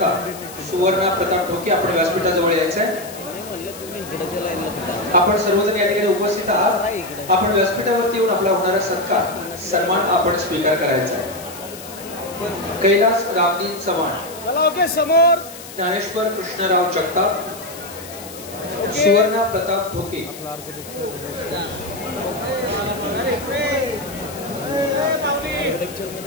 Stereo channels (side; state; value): left; noise; hiss, 15 dB below the sound